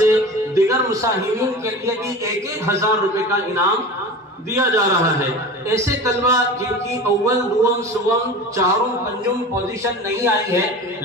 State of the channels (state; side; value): normal; both; correlation 0.34